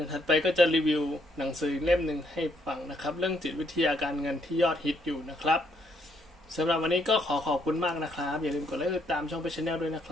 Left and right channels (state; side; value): normal; both; correlation 0.72